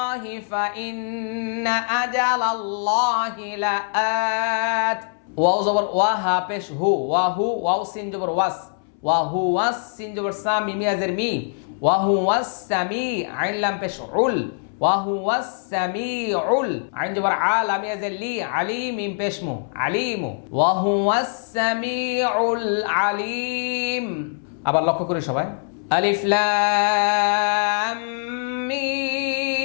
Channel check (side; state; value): right; silent; 64 dB below the other